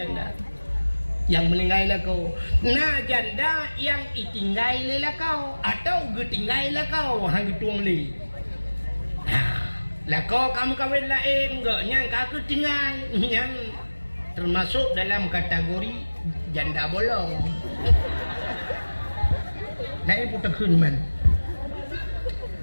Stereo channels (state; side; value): inverted; both; correlation -1.00